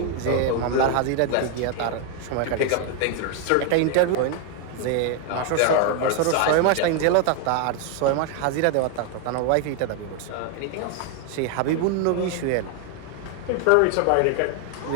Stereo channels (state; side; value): different; both; correlation 0.01